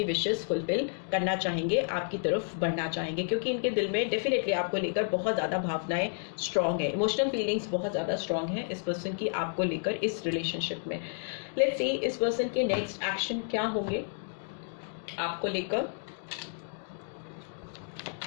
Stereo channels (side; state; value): right; silent; 57 dB below the other